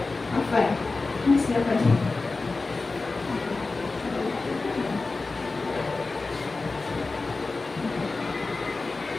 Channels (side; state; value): right; quieter; 3.7 dB